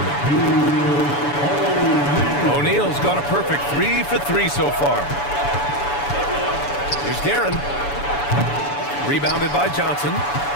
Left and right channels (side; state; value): right; late; 7.0 ms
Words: O'Neal's got a perfect 3 for 3 so far. Here's Guerin. Rebounded by Johnson.